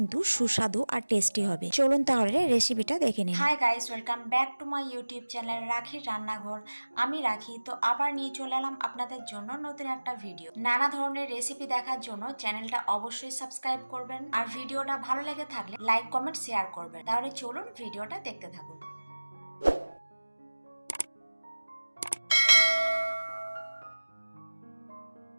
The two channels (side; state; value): both; inverted; correlation -1.00